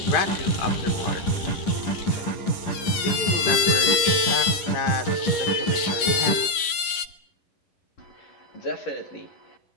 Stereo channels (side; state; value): right; late; 11 ms